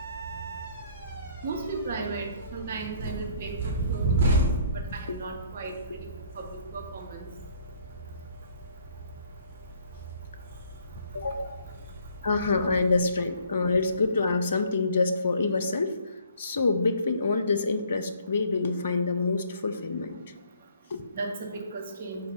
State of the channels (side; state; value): both; inverted; correlation -0.62